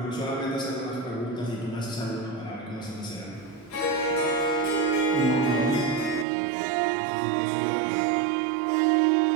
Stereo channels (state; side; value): drops out; left; at 6.2 s